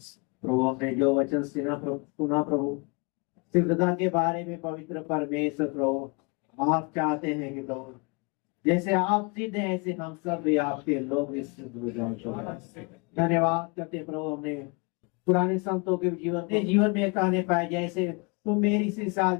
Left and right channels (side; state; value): right; quieter; 31.1 dB